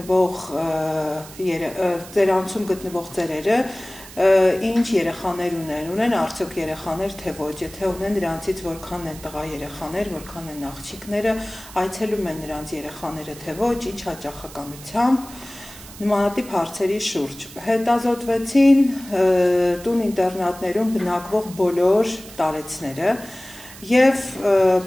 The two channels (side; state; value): right; noise; hiss, 17 dB below the sound